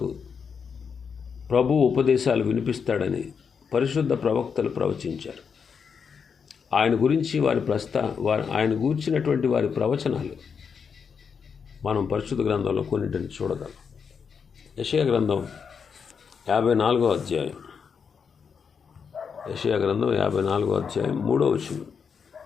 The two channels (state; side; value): quieter; right; 6.3 dB